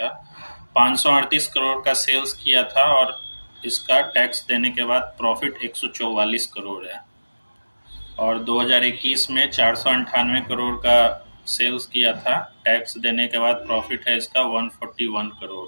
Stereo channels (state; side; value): inverted; both; correlation -1.00